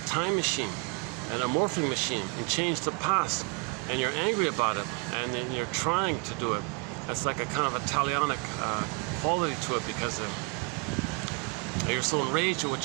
time machine and a morphing machine and change the past? And you're angry about it, and then you're trying to do it. That's like a kind of a talionic quality to it, because you're so enraged at what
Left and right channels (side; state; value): left; quieter; 30.8 dB